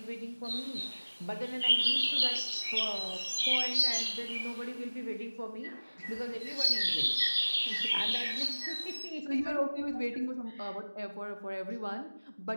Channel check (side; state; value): both; inverted; correlation -1.00